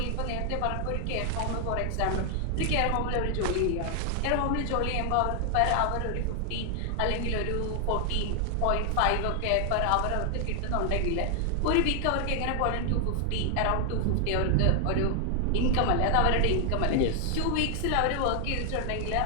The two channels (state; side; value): different; both; correlation 0.00